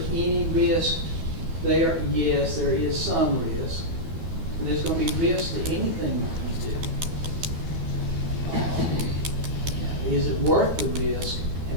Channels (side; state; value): left; late; 12 ms